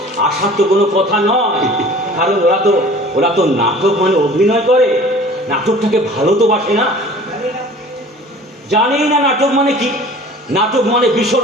আসার তো কোনো কথা নয়, কারণ ওরা তো নাটক মানে অভিনয় করে, নাটকটাকে ভালো তো বাসে না, জানেই না নাটক মানে কি। নাটক মানে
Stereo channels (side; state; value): both; normal; correlation 0.45